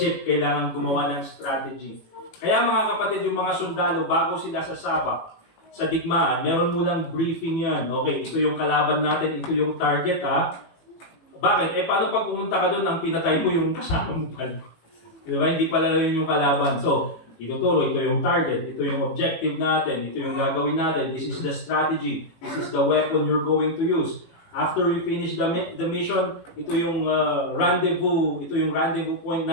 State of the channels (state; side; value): late; right; 18 ms